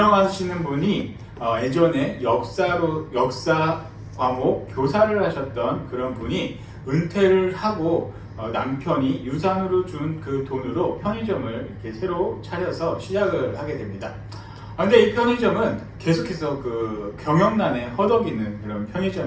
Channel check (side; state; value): both; identical; correlation 1.00